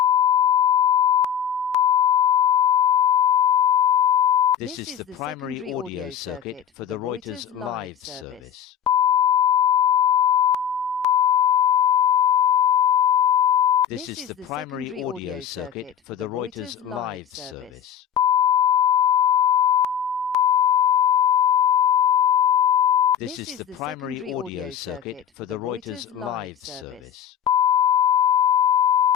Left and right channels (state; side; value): quieter; right; 9.1 dB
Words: This is the primary audio circuit for the Reuters live service. This is the primary audio circuit for the Reuters live service. This is the primary audio circuit for the Reuters live service.